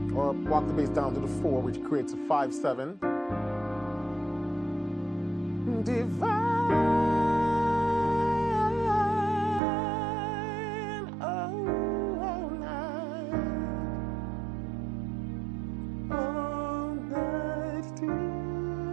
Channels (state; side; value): drops out; left; at 9.6 s